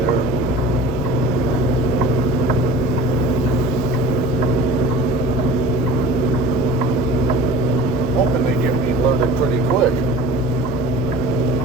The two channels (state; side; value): normal; both; correlation 0.40